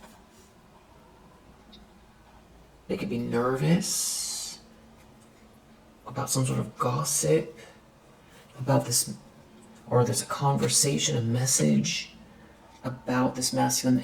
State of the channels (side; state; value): both; identical; correlation 1.00